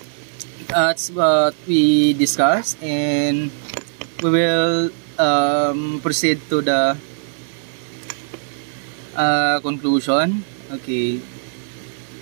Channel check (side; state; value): left; silent; digital silence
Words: that's what we discussed, and we will proceed to the conclusion. Okay.